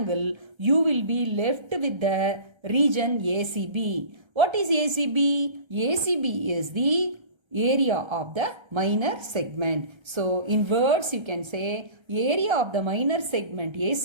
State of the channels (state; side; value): late; left; 1.3 ms